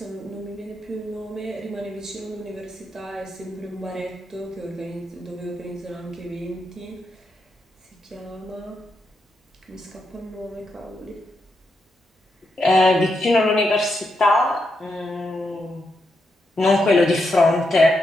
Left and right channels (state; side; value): normal; both; correlation 0.83